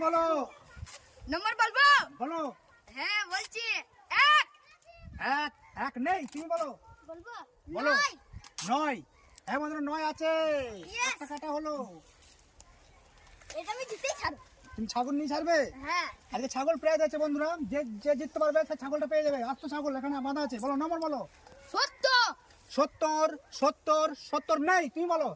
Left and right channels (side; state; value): both; identical; correlation 1.00